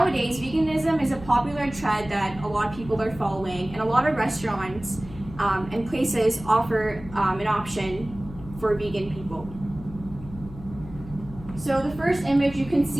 veganism is a popular trend that a lot of people are following, and a lot of restaurants and places offer an option for vegan people. So the first image, you can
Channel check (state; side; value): noise; left; hum, 15 dB below the sound